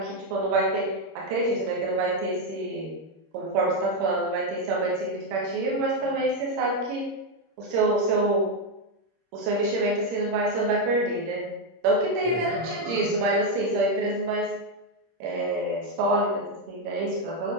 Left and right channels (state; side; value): late; left; 26 ms